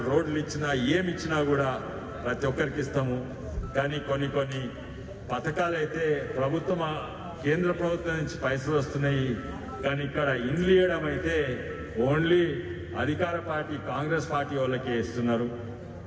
రోడ్లు ఇచ్చినా, ఏమిచ్చినా కూడా ప్రతి ఒక్కరికి ఇస్తాము. కానీ కొన్ని పథకాలు అయితే కేంద్ర ప్రభుత్వం నుంచి పైసలు వస్తున్నాయి, కానీ ఇక్కడ ఇండ్లు ఇవ్వడం అయితే ఓన్లీ అధికార పార్టీ కాంగ్రెస్ పార్టీ వాళ్ళకే ఇస్తున్నారు.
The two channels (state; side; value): identical; both; correlation 1.00